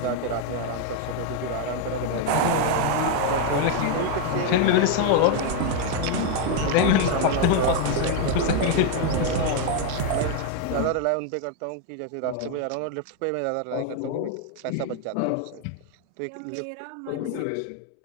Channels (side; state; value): both; different; correlation 0.01